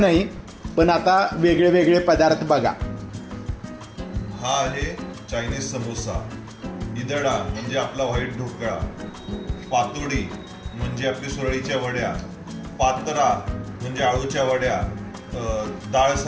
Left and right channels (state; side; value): identical; both; correlation 1.00